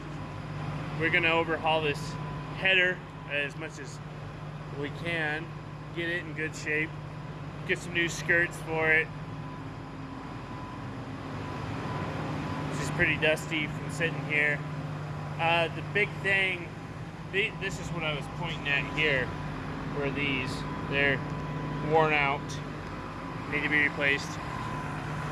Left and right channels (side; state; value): both; identical; correlation 1.00